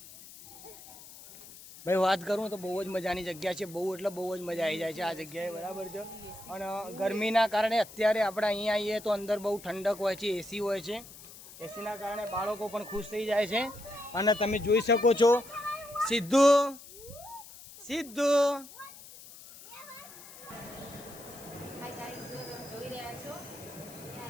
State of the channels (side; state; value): left; noise; hiss, 17 dB below the sound